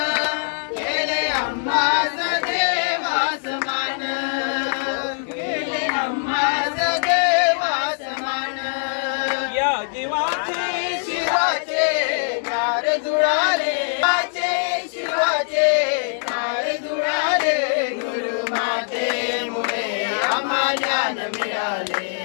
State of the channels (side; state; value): right; silent; 64 dB below the other